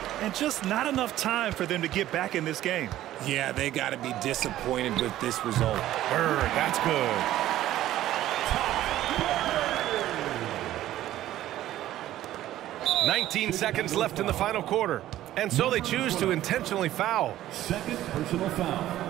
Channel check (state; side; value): quieter; left; 13.8 dB